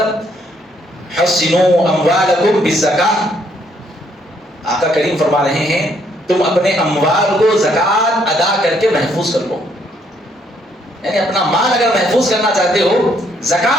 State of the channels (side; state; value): both; normal; correlation 0.69